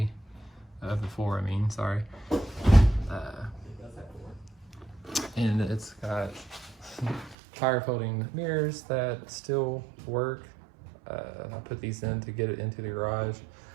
four, sorry. And it's got tire folding mirrors that still work. I put these in to get it into the garage.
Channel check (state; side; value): drops out; left; at 7.4 s